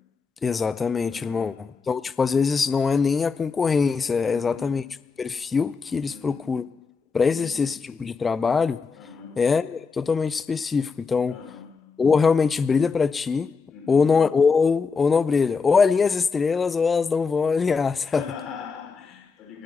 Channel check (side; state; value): right; quieter; 5.0 dB